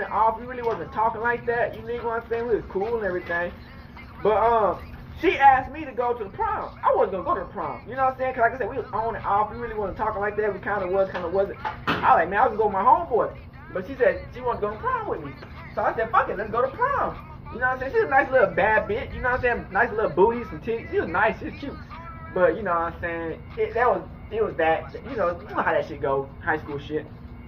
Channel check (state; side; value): identical; both; correlation 1.00